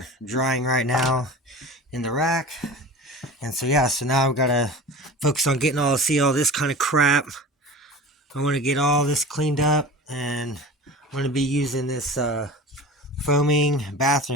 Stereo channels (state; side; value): normal; both; correlation 0.35